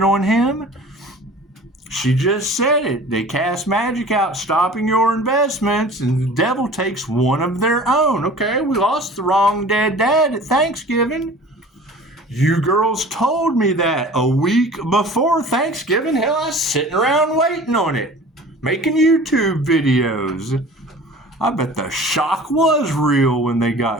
on him? She just said it. They cast magic out, stopping your investments, and the devil takes one of their own. Okay, we lost the wrong dead dad at Thanksgiving. You girls told me that a week before Thanksgiving. Hell, I was sitting around waiting on it, making YouTube videos. I bet the shock was real when they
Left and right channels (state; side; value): normal; both; correlation 0.43